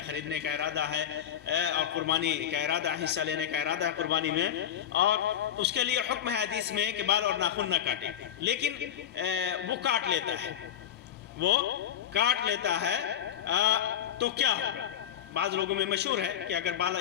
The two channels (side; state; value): right; quieter; 10.1 dB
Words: خریدنے کا ارادہ ہے اور قربانی کا ارادہ، حصہ لینے کا ارادہ ہے قربانی میں، اور اس کے لیے حکم ہے حدیث میں کہ بال اور ناخن نہ کاٹے، لیکن وہ کاٹ لیتا ہے تو کیا ہوگا؟ بعض لوگوں میں مشہور ہے کہ اگر